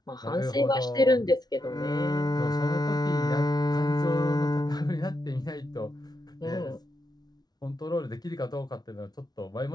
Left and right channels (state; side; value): late; right; 0.19 ms